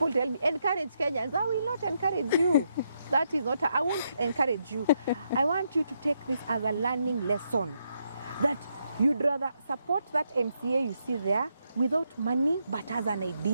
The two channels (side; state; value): both; inverted; correlation -0.79